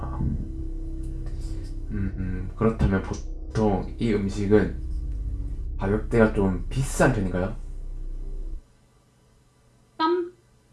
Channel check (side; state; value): both; identical; correlation 1.00